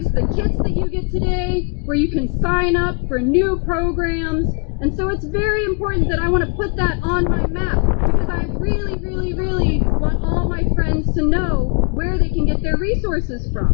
the kits that you get today, where you can sign up for new programs. And so it's very important that I want to put that on my map, because I really, really, really want all my friends to know where they can get their resources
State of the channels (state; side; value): quieter; right; 37.6 dB